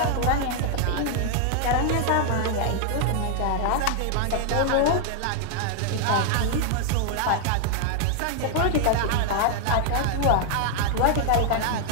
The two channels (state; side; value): different; both; correlation 0.00